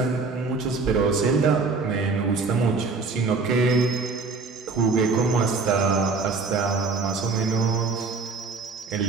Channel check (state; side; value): quieter; left; 4.2 dB